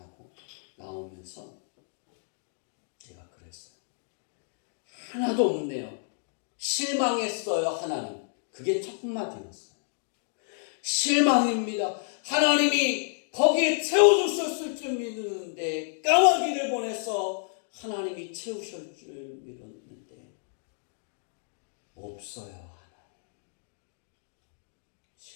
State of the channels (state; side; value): silent; right; digital silence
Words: 나오면서 제가 그랬어요. 하나도 없네요. 실망했어요. 하나님. 그게 첫 마디였어요. 실망입니다. 하나님이 거기에 채워주셨을 줄 믿었는데 까마귀를 보내서 하나님이 채우실 줄 믿었는데 없어요. 하나님.